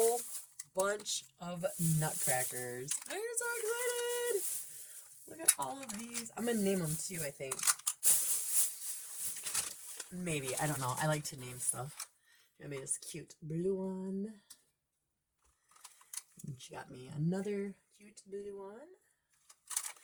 bunch of nutcrackers. I'm so excited! Look at all of these. I'm going to name them too, I think. Maybe, I don't know. I like to name stuff. I made this cute blue one. And she got me another cute blue one.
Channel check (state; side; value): identical; both; correlation 1.00